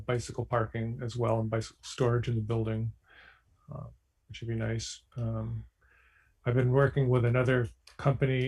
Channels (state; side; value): identical; both; correlation 1.00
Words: bicycle parking as well and bicycle storage in the building, which would be nice. I've been working with another